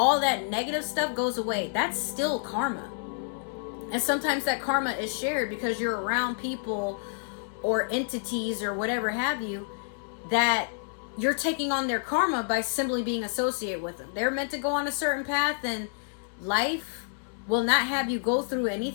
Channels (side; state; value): right; silent; 59 dB below the other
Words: that negative stuff goes away. That's still karma. And sometimes that karma is shared because you're around people or entities or whatever have you that you're taking on their karma by simply being associated with them. They're meant to go on a certain path, and life will not have you go through